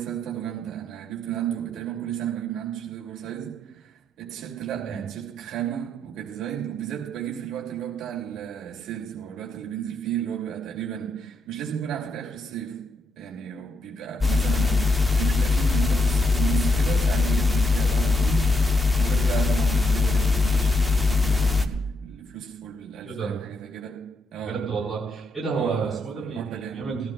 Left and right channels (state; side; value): normal; both; correlation 0.79